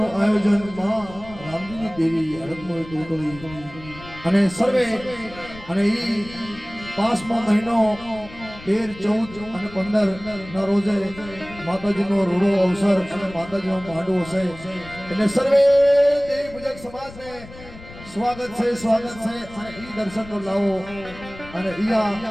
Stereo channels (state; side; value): noise; left; rumble, 17 dB below the sound